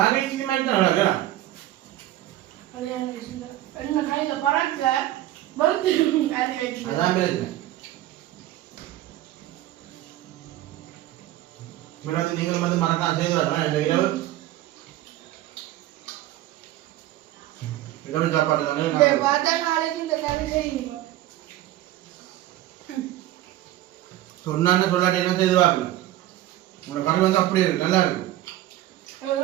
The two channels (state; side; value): quieter; left; 14.7 dB